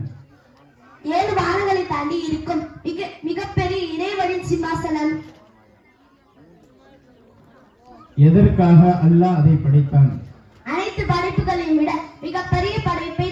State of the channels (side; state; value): both; identical; correlation 1.00